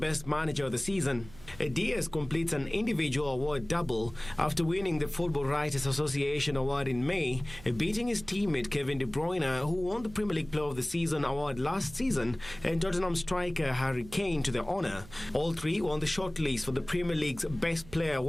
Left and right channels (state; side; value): noise; right; hum, 19 dB below the sound